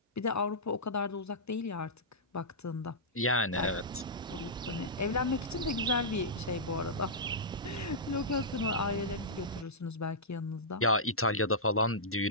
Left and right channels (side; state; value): both; normal; correlation -0.13